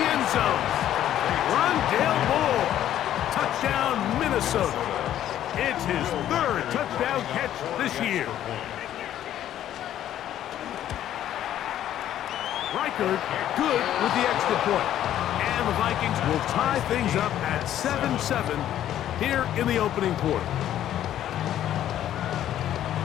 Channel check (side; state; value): right; quieter; 11.7 dB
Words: end zone. Rondale Moore. Touchdown, Minnesota. It's his 3rd touchdown catch this year. Reichard good with the extra point. And the Vikings will tie things up at 7-7 here in the opening quarter.